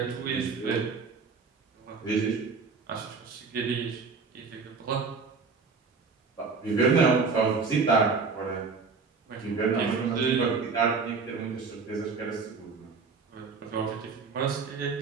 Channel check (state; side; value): quieter; left; 4.8 dB